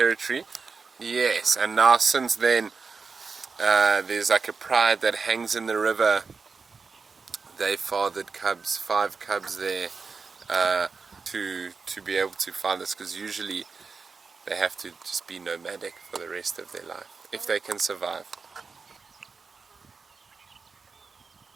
Yes, and now since then, there's like a pride that hangs in the river. They fathered cubs, 5 cubs there, to be able to find this, because usually they have to just be nomadic for the rest of their life, if they can survive.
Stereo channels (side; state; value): left; quieter; 4.8 dB